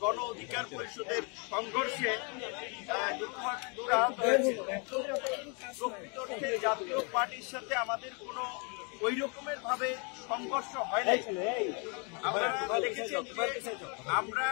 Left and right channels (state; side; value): quieter; right; 34.5 dB